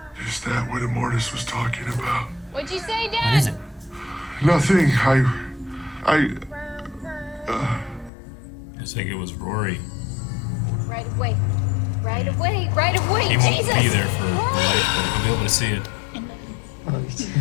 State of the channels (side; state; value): right; drops out; at 8.1 s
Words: Is that what Immortus was talking about? What'd you say, Dad? What is it? Nothing. I think it was Rory. Right away. Right away. Right away. He won't Jesus. be there for life, but he'll be able to see it.